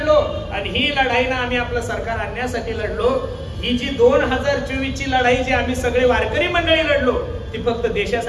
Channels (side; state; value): both; identical; correlation 1.00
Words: आणि ही लढाई ना आम्ही आपलं सरकार आणण्यासाठी लढलो. ही जी 2024 ची लढाई जी आम्ही सगळे वारकरी मंडळी लढलो ती फक्त